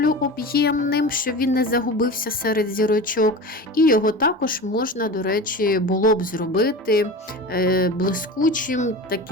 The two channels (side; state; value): both; normal; correlation 0.31